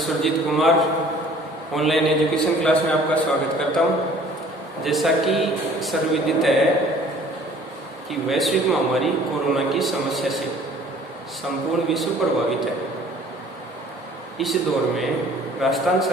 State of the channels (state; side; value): normal; both; correlation 0.53